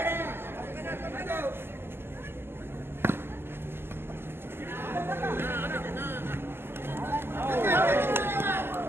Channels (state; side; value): late; left; 0.11 ms